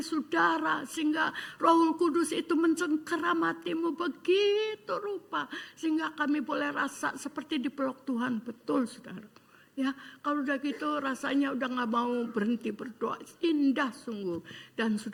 sehingga Roh Kudus itu mencengkeram hatimu begitu rupa sehingga kami boleh rasa seperti dipeluk Tuhan. Betul saudara. Ya, kalau udah gitu rasanya udah gak mau berhenti berdoa. Indah sungguh. Dan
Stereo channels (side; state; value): both; identical; correlation 1.00